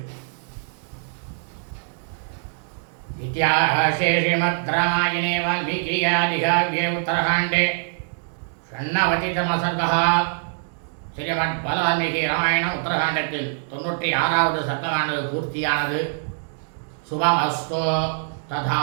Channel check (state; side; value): silent; left; digital silence